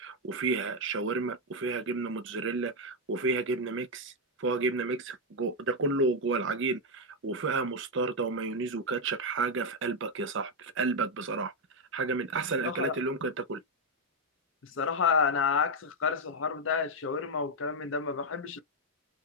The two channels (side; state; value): both; normal; correlation 0.03